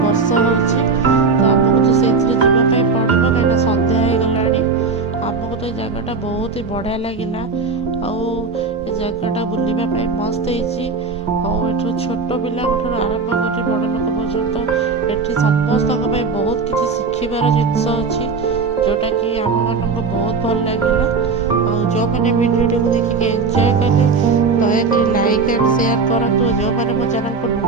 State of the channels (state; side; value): quieter; left; 4.6 dB